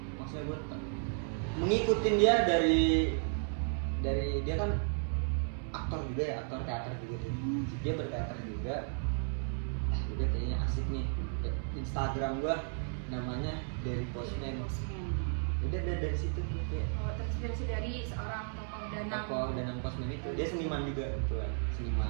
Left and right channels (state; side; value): silent; left; 55 dB below the other